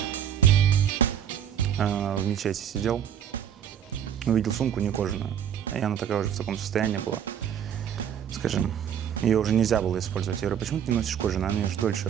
мечети сидел, увидел сумку не кожаную, и она такая уже в таком состоянии была, скажем, ее уже нельзя было использовать. Я говорю, почему ты не носишь кожаную? Она же дольше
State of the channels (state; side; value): quieter; left; 9.1 dB